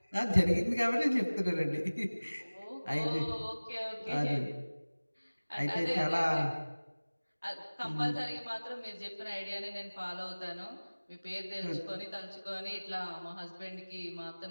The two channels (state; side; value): inverted; both; correlation -1.00